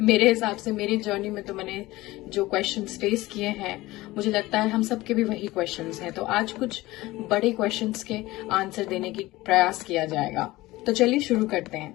मेरे हिसाब से। मेरी जर्नी में तो मैंने जो क्वेश्चंस फेस किए हैं, मुझे लगता है हम सबके भी वही क्वेश्चंस हैं। तो आज कुछ बड़े क्वेश्चंस के आंसर देने की प्रयास किया जाएगा। तो चलिए शुरू करते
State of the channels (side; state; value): right; quieter; 18.8 dB